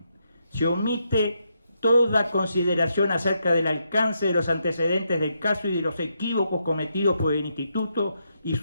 se omite toda consideración acerca del alcance de los antecedentes del caso y de los equívocos cometidos por el Instituto y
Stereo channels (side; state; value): both; inverted; correlation -0.80